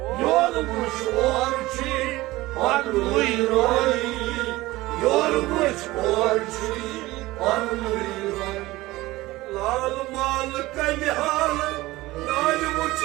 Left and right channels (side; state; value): left; quieter; 18.7 dB